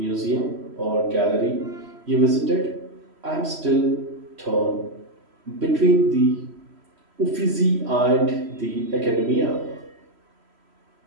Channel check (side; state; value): left; late; 3.0 ms